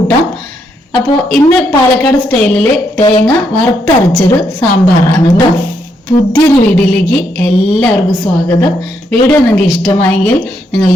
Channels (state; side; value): normal; both; correlation 0.77